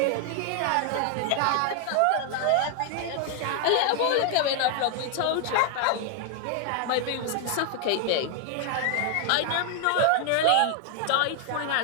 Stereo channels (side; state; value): both; different; correlation 0.00